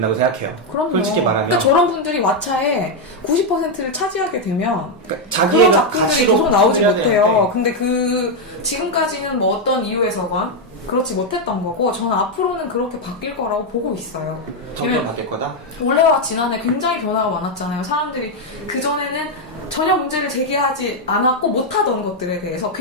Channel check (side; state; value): both; normal; correlation 0.02